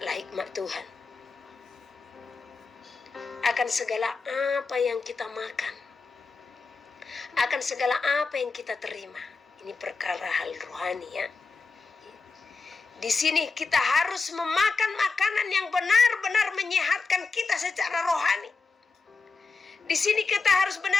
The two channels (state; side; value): quieter; right; 4.4 dB